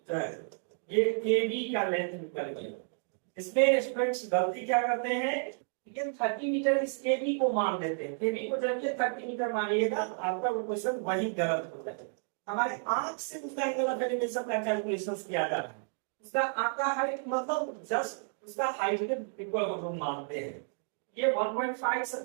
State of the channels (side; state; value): left; silent; 57 dB below the other